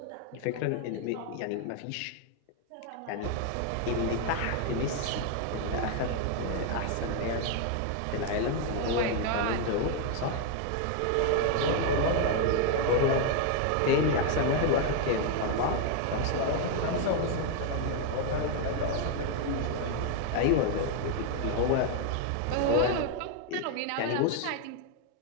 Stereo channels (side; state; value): both; different; correlation 0.00